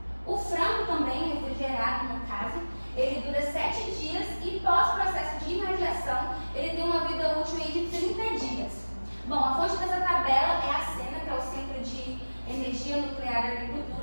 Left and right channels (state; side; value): inverted; both; correlation -1.00